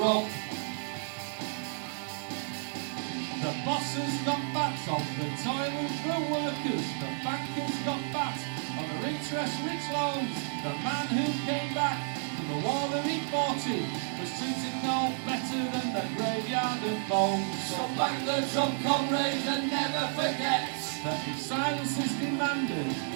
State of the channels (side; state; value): left; silent; 57 dB below the other